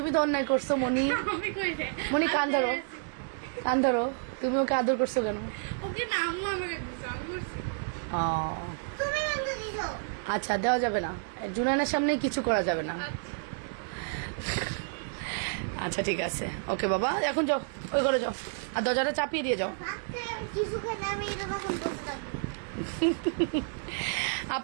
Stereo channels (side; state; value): left; silent; digital silence